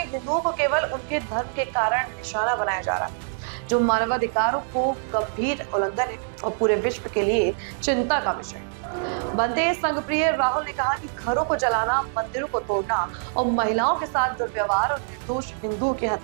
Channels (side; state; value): left; silent; digital silence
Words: हिंदुओं को केवल उनके धर्म के कारण निशाना बनाया जा रहा है, जो मानवाधिकारों को गंभीर उल्लंघन है और पूरे विश्व के लिए चिंता का विषय है। भंते संघप्रिय राहुल ने कहा कि घरों को जलाना, मंदिरों को तोड़ना और महिलाओं के साथ दुर्व्यवहार और निर्दोष हिंदुओं की